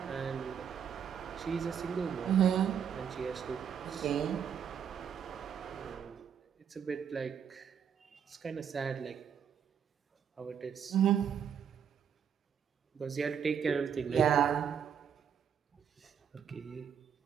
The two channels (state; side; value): quieter; left; 7.8 dB